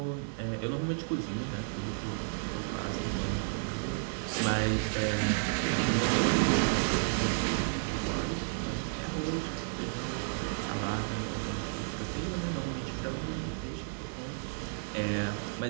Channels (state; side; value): silent; left; 56 dB below the other